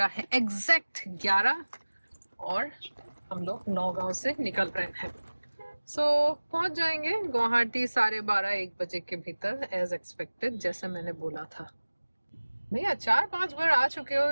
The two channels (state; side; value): inverted; both; correlation -1.00